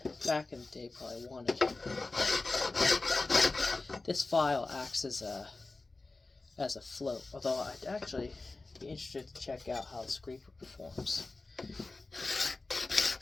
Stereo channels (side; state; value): right; quieter; 3.4 dB